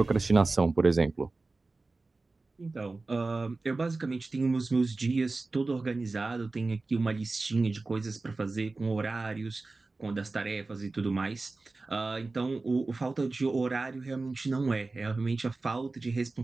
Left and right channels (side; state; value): left; quieter; 3.5 dB